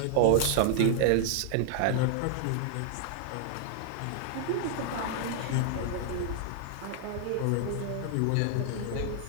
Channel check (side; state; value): both; different; correlation 0.00